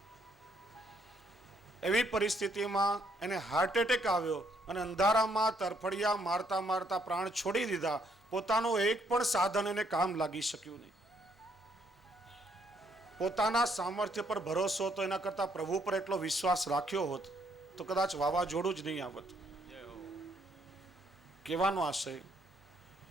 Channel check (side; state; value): both; normal; correlation 0.70